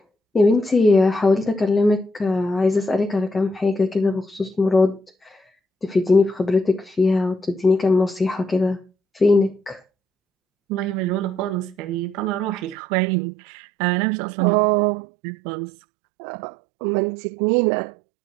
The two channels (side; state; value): left; drops out; at 12.8 s